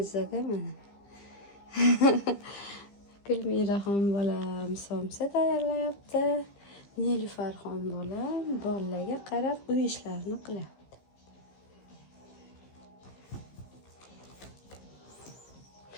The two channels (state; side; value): late; right; 15 ms